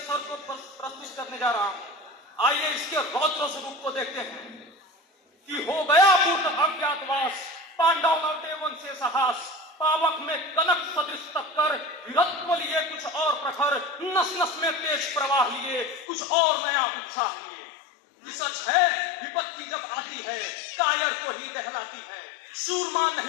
को प्रस्तुत करने जा रहा हूं। आइए इसके रौद्र स्वरूप को देखते हैं कि हो गया पूर्ण अज्ञातवास, पांडव लौटे वन से साहस, पावक में कनक सदृश टक्कर, वीरत्व लिए कुछ और प्रखर, नस नस में तेज प्रवाह लिए कुछ और नया उत्साह लिए। सच है विपत्ति जब आती है कायर को ही दहलाती है। सूरमा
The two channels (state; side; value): drops out; right; at 16.1 s